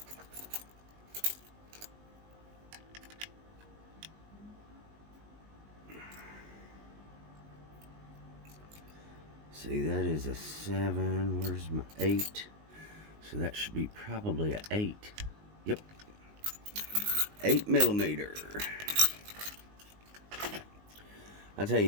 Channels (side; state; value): left; late; 19 ms